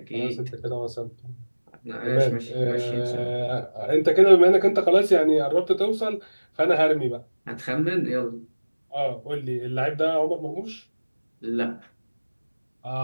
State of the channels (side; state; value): both; inverted; correlation -1.00